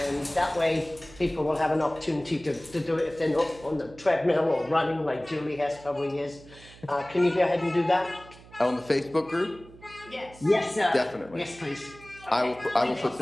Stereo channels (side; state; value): right; noise; hum, 21 dB below the sound